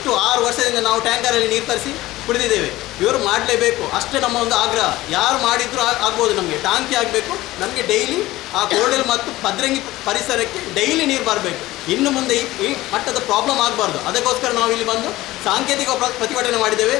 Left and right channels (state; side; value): quieter; right; 17.5 dB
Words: 6 ವರ್ಷದಿಂದ ನಾವು ಟ್ಯಾಂಕರಲ್ಲಿ ನೀರು ತರಿಸಿ ಕುಡಿದಿದ್ದೇವೆ. ಇವರು ಮಾಡಲೇಬೇಕು, ಅಷ್ಟೇ ನಮ್ಮ ಒಂದು ಆಗ್ರಹ. ಯಾರು ಮಾಡಿದರೂ ಆಗ್ಬೋದು. ನಮಗೆ ಟಾಂಕಿ ಆಗಬೇಕು. ನಮಗೆ ಡೈಲಿ ಆ ಕೋರ್ಡೆಲ್ ಮತ್ತು ಪದ್ರಂಗಿ ಪರಿಸರಕ್ಕೆ ಡೈಲಿ ನೀರು ಬರಬೇಕು. ಇನ್ನು ಮುಂದೆ ಈ ಮಟ್ಟದ ಪ್ರಾಬ್ಲಮ್ ಆಗಬಾರ್ದು. ಅದಕ್ಕೋಸ್ಕರ ನಾವು ಇಲ್ಲಿ ಬಂದು ಸಾಂಕೇತಿಕ ಪ್ರತಿಭಟನೆ ಮಾಡಿದ್ದೇವೆ.